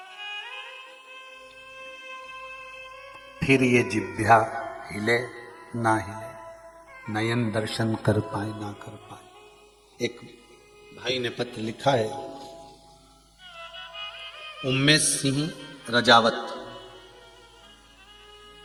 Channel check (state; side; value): identical; both; correlation 1.00